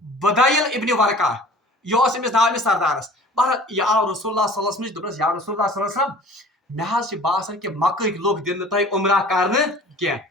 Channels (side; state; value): both; normal; correlation 0.46